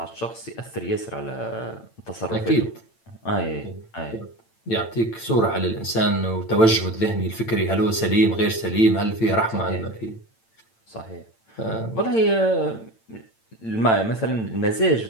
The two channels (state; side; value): late; right; 8.9 ms